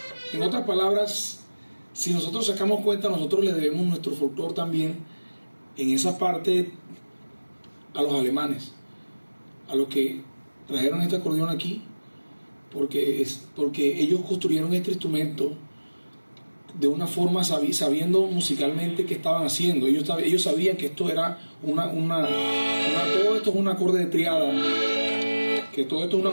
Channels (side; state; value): both; inverted; correlation -1.00